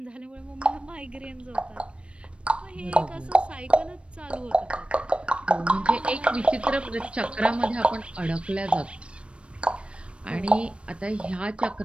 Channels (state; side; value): late; left; 0.059 ms